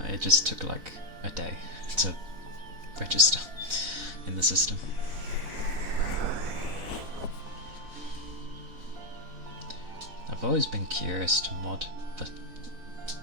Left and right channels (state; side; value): late; left; 4.0 ms